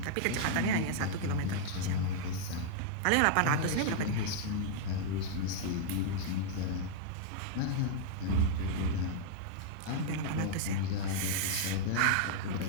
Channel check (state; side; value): different; both; correlation -0.01